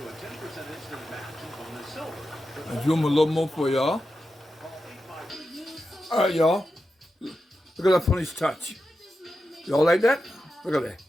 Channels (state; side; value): normal; both; correlation 0.90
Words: I'll do them a little more for y'all. Alright, y'all. Look at that funny touch. Y'all like that? Look at that.